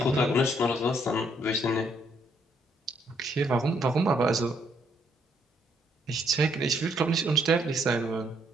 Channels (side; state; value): both; normal; correlation 0.71